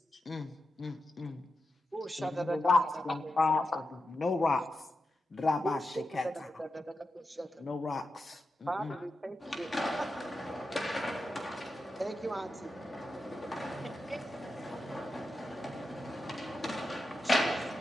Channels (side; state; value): both; normal; correlation 0.89